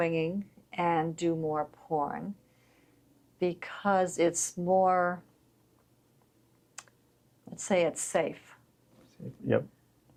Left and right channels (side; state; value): both; identical; correlation 1.00